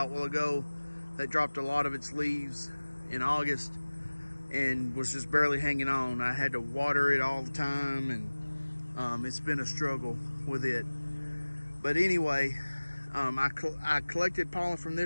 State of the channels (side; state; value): both; inverted; correlation -1.00